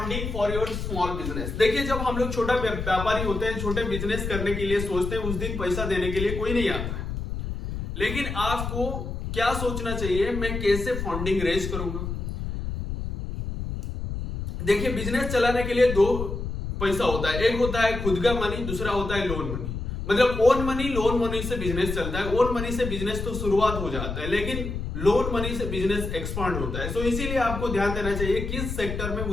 for your small business. देखिए जब हम लोग छोटा व्यापारी होते हैं, छोटे बिजनेस करने के लिए सोचते हैं, उस दिन पैसा देने के लिए कोई नहीं आता है। लेकिन आपको क्या सोचना चाहिए, मैं कैसे फंडिंग रेज करूंगा। देखिए बिजनेस चलाने के लिए दो पैसा होता है, एक होता है खुद का मनी, दूसरा होता है लोन मनी। मतलब ओन मनी, लोन मनी से बिजनेस चलता है। ओन मनी से बिजनेस तो शुरुआत हो जाता है, लेकिन लोन मनी से बिजनेस एक्सपांड होता है। इसीलिए आपको ध्यान देना चाहिए किस सेक्टर में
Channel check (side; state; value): left; noise; rumble, 5 dB below the sound